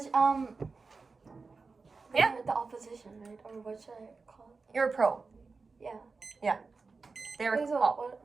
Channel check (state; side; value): quieter; left; 4.3 dB